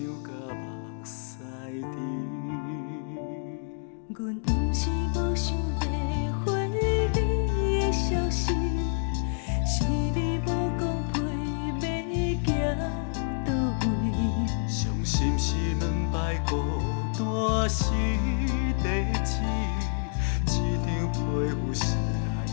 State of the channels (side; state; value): right; silent; 59 dB below the other